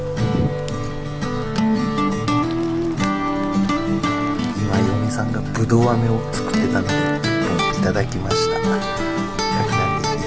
さんがぶどう飴を作ってたのでいただきました。焼きなんでい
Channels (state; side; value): identical; both; correlation 1.00